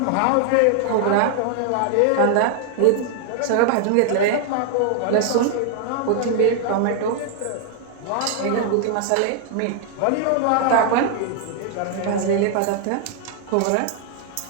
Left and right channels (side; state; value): both; different; correlation 0.00